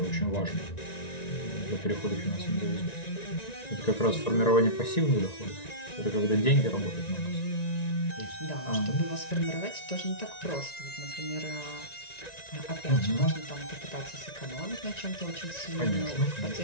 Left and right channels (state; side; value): late; right; 1.9 ms